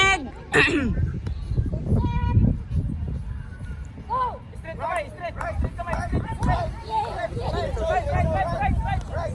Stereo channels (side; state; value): both; identical; correlation 1.00